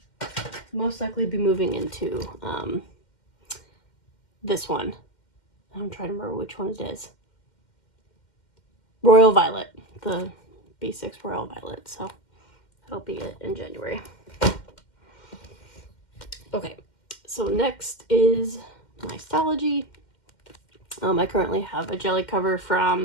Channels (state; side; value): late; right; 2.1 ms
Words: most likely be moving into this one. I'm trying to remember which one it is. Royal Violet, the B6 Royal Violet. So that'll be it in January. Okay, so next is my Stalogy. I currently have a jelly cover